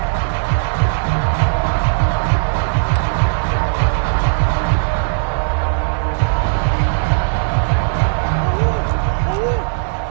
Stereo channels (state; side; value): silent; left; digital silence